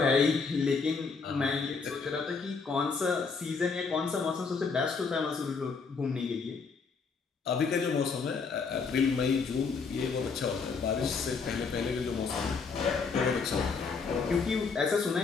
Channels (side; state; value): right; quieter; 5.0 dB